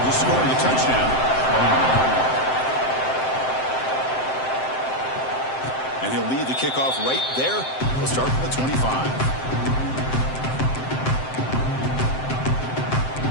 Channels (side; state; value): right; late; 7.7 ms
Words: just scoring a touchdown. And he'll lead the kickoff right there. We'll start from the 25.